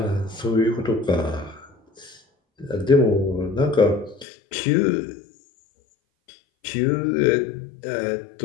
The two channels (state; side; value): drops out; right; at 4.2 s